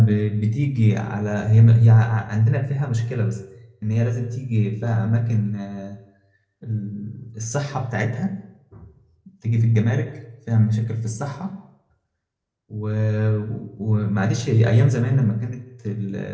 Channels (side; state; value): both; identical; correlation 1.00